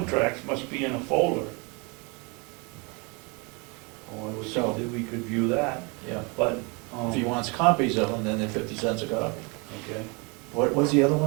must be in a folder. Oh, I would So- think that we could view that, Yeah. but, If he wants copies of them, then they're 50 cents a copy. okay. What was the other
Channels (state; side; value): quieter; left; 30.3 dB